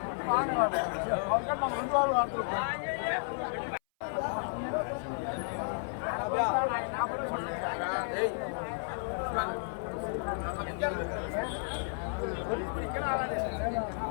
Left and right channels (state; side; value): silent; right; 56 dB below the other